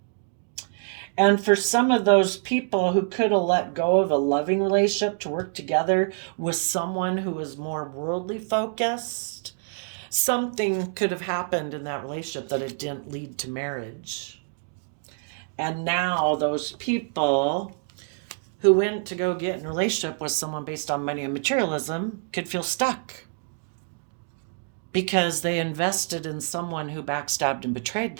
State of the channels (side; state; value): left; silent; digital silence